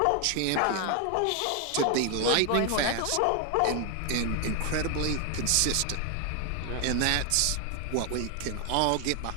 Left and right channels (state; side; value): different; both; correlation 0.00